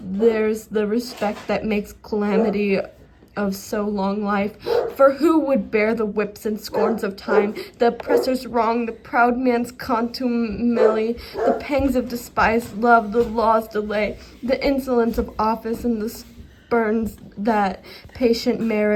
There's the respect that makes calamity of so long life. For who would bear the whips and scorns of time, the oppressor's wrong, the proud man's contumely, the pangs of despised love, the law's delay, the insolence of office, and the spurns that patient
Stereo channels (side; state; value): both; identical; correlation 1.00